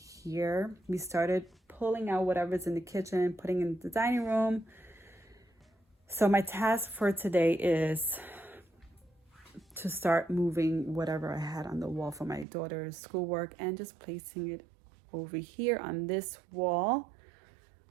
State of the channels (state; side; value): drops out; left; at 12.5 s